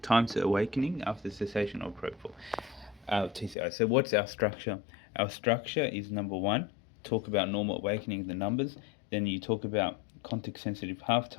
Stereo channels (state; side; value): drops out; right; at 3.6 s